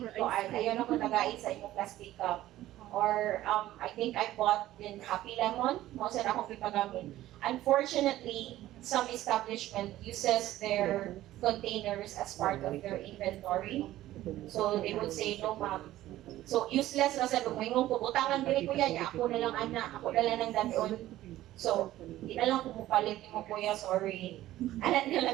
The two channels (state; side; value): quieter; left; 14.8 dB